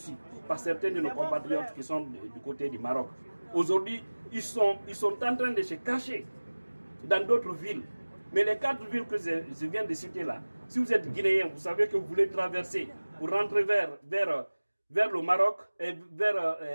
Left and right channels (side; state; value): both; inverted; correlation -1.00